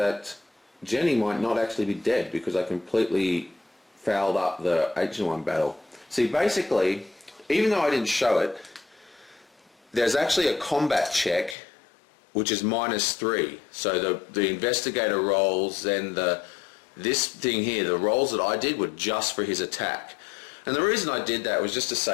Jenny might not actually be dead because I completely fouled up the H1 battle. See, basically, even though I didn't show it, there's actually a combat check which is -3. So the investigator rolls, then this thing here, the rolls that I did were just for his attack. And the reason I did that was just to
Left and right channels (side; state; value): right; drops out; at 11.6 s